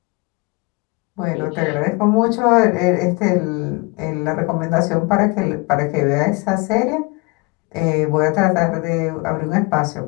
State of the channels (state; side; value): quieter; right; 28.0 dB